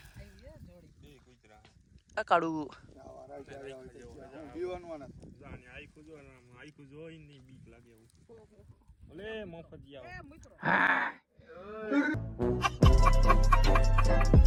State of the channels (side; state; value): both; identical; correlation 1.00